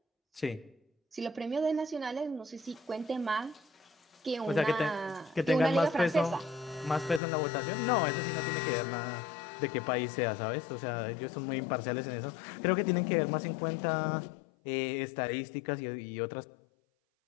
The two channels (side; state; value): right; drops out; at 7.2 s